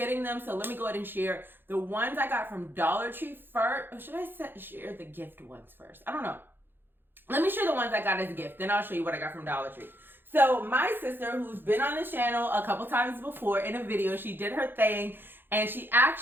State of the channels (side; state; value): left; late; 0.10 ms